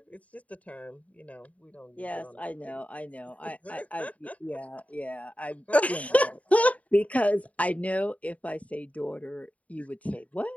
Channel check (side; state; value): right; late; 0.068 ms